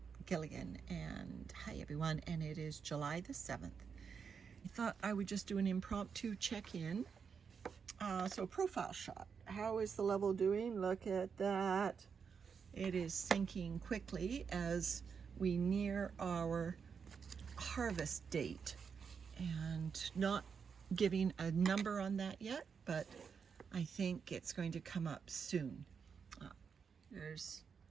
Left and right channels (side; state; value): left; quieter; 6.2 dB